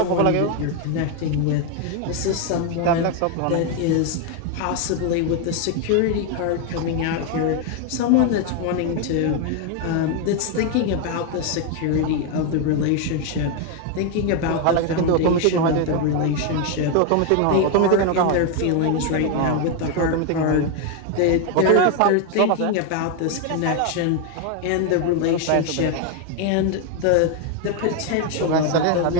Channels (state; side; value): different; both; correlation 0.01